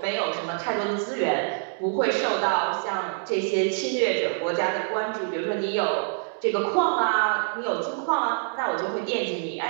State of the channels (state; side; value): silent; left; digital silence